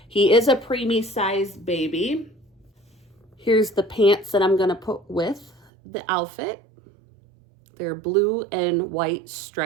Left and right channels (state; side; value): drops out; left; at 5.7 s